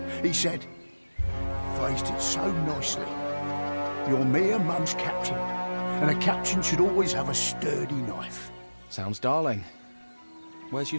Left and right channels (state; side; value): inverted; both; correlation -1.00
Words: He said, phrased it so nicely. You're me and Mum's captain, and a captain should always have a sturdy knife. Sounds darling. Where's your